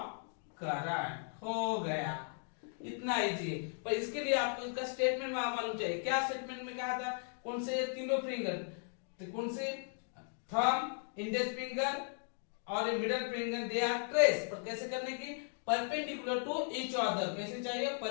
current। हो गया, इतना easy है। पर इसके लिए आपको इसका statement मालूम चाहिए। क्या स्टेटमेंट में कहा था, कौन से तीनों फिंगर, तो कौन से, थंब, इंडेक्स फिंगर और middle finger, they are trace, पर कैसे करने की, परपेंडिकुलर टू ईच अदर, कैसे चाहिए,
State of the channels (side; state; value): right; silent; 53 dB below the other